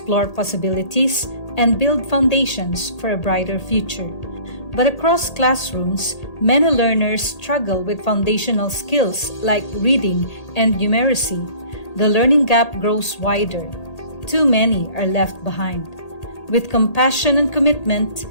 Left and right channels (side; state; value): right; late; 1.8 ms